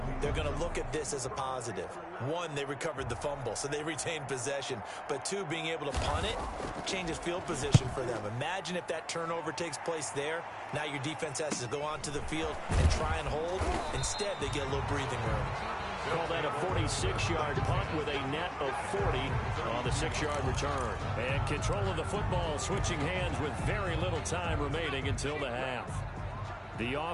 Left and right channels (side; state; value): both; identical; correlation 1.00